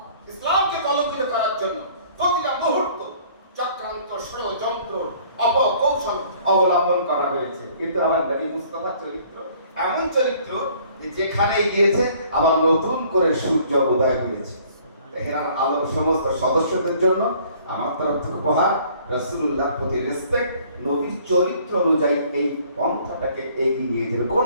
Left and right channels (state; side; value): inverted; both; correlation -0.57